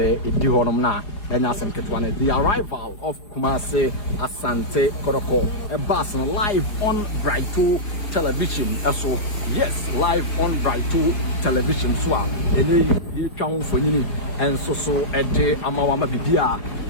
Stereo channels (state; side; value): late; right; 4.9 ms